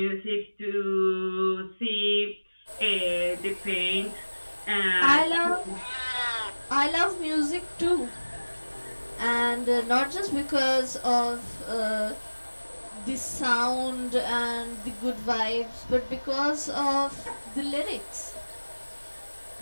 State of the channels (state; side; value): inverted; both; correlation -1.00